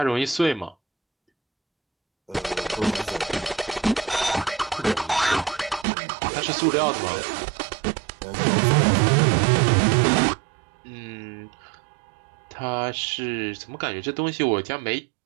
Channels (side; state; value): left; drops out; at 5.9 s